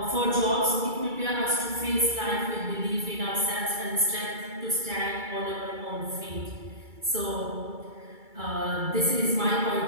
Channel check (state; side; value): late; left; 2.3 ms